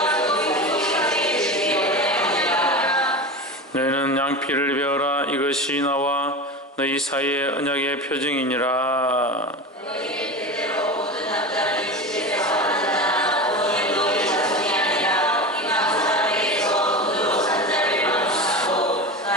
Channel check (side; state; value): both; normal; correlation 0.26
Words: 너희는 양피를 베어라. 이것이 나와 너희 사이의 언약의 표징이니라.